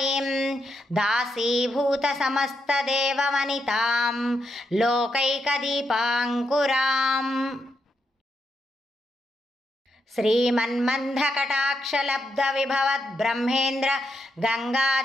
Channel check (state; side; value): normal; both; correlation 0.82